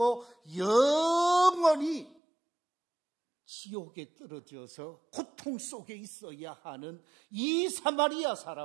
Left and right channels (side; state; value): left; drops out; at 2.1 s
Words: 영원히 지옥에 떨어져서 고통 속에 있어야 하는 이 사마리아